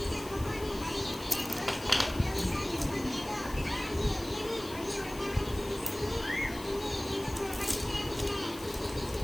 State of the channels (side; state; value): left; noise; hiss, 15 dB below the sound